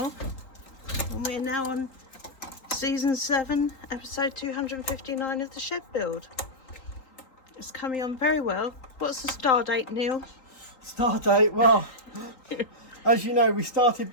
And we're now on season 7, episode 259 of the shed build. It's coming on very well. What's the star date, Neil? Start date, well, as you know, we started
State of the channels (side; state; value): right; late; 3.8 ms